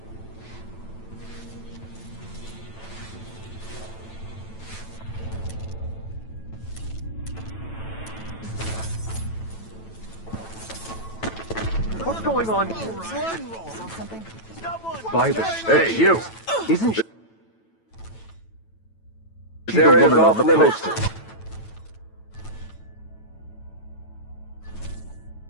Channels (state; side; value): late; right; 9.1 ms